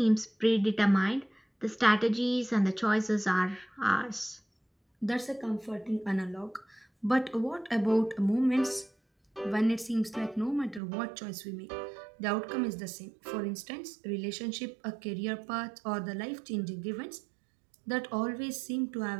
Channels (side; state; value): left; drops out; at 10.8 s